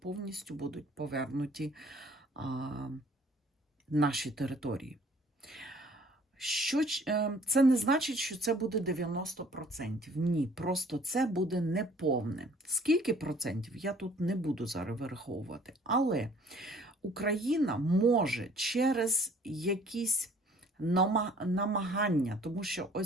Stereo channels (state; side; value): normal; both; correlation 0.56